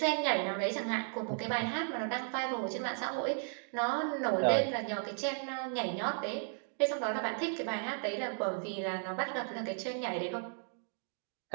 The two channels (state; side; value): silent; left; 54 dB below the other